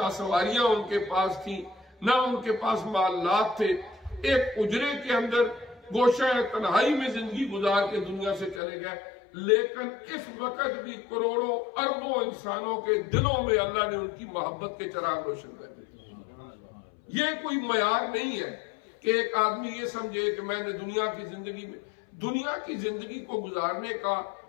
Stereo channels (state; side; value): drops out; right; at 8.6 s